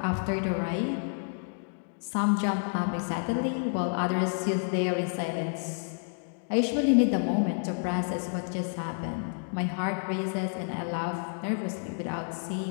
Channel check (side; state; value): right; silent; 58 dB below the other